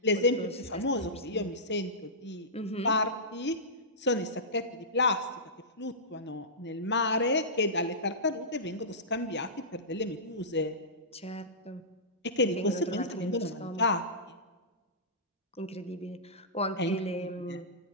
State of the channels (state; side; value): normal; both; correlation -0.17